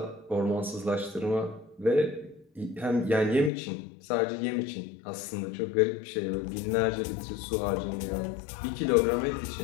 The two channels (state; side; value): drops out; right; at 3.5 s